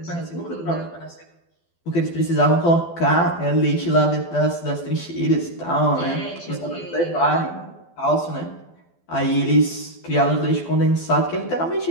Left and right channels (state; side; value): late; right; 12 ms